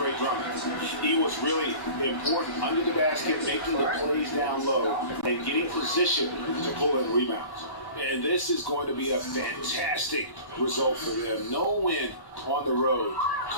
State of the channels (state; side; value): late; right; 1.1 ms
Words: Drummond. He was really important under the basket, making the plays down low and getting position to pull in rebounds. And this is going to be a fantastic result for them. No win on the road